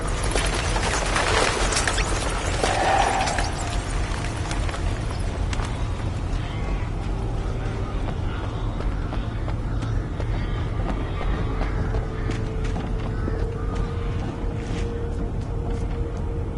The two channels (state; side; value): identical; both; correlation 1.00